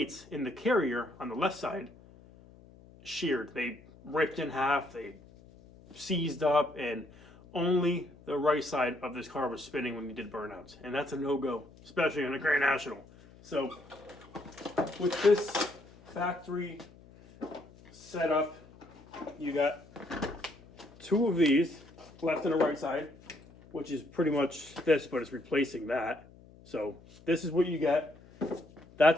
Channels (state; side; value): noise; left; hum, 23 dB below the sound